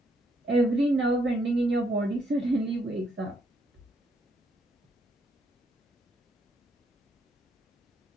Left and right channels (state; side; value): normal; both; correlation 0.74